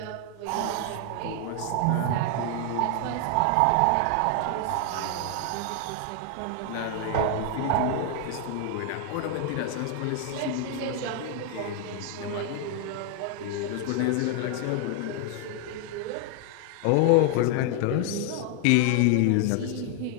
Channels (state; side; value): different; both; correlation 0.00